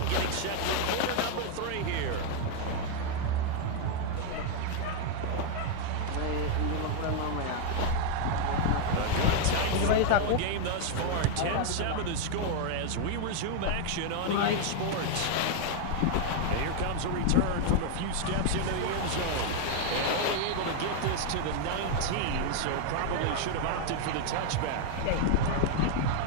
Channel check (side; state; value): both; different; correlation 0.00